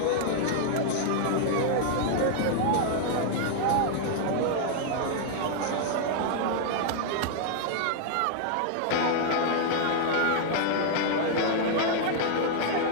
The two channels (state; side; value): different; both; correlation -0.01